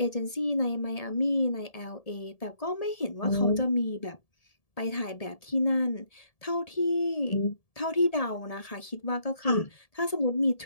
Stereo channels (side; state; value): right; late; 1.7 ms